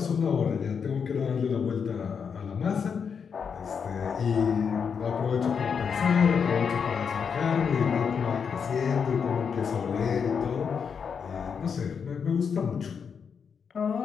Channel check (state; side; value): quieter; right; 6.5 dB